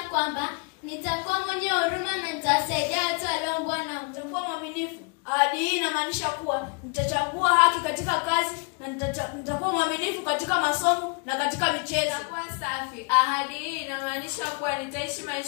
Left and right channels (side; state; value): right; quieter; 33.4 dB